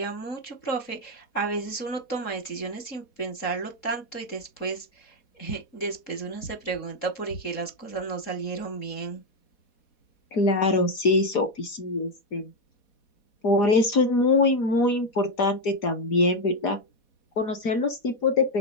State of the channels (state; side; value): late; right; 4.1 ms